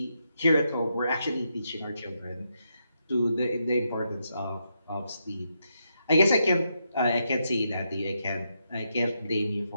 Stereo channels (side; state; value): both; inverted; correlation -0.81